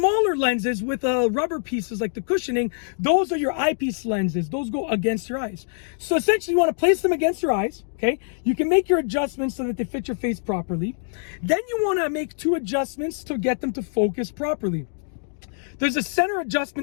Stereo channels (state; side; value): silent; right; digital silence